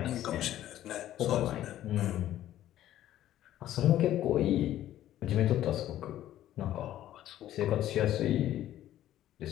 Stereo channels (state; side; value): quieter; right; 12.8 dB